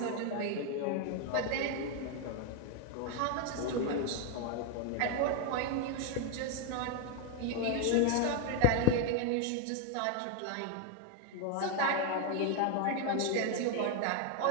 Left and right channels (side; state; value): both; different; correlation 0.01